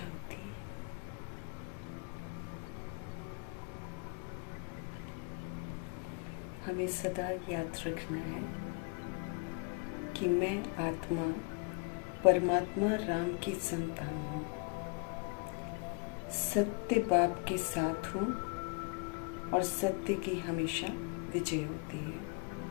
हमें सदा याद रखना है कि मैं आत्मा परमात्मा राम की संतान हूँ, सत्य बाप के साथ हूँ और सत्य की हमेशा विजय होती है।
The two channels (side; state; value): right; quieter; 32.9 dB